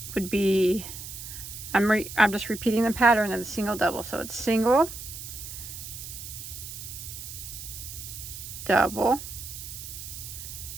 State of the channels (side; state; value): right; noise; hiss, 10 dB below the sound